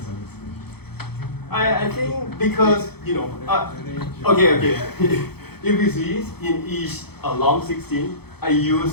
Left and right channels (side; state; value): right; late; 0.97 ms